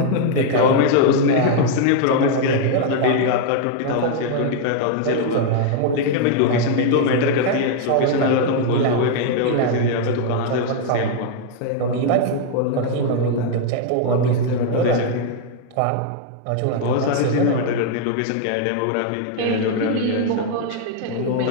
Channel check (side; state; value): both; different; correlation 0.00